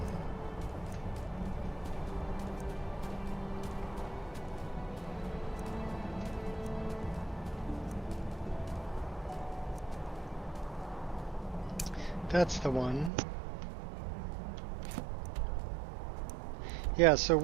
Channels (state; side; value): drops out; left; at 13.1 s